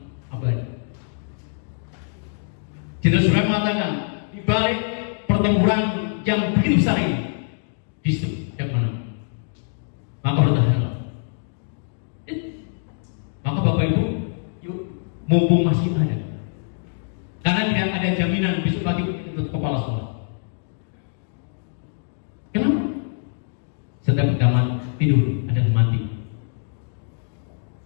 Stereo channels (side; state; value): right; silent; digital silence